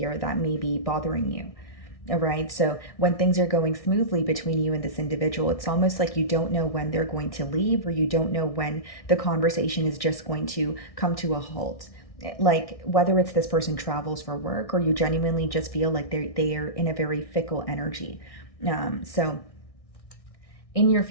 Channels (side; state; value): right; late; 1.6 ms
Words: that may be bothering you. All right. So when things are going smoothly between you and this individual, it's almost like you don't know when they're going to leave, or you don't know when the conversation is just going to come to a halt. Like whether it's this person travels for work, or you genuinely just feel like they are in a very fickle energy. So in your